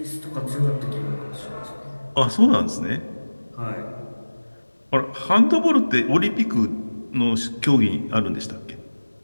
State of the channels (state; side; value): inverted; both; correlation -1.00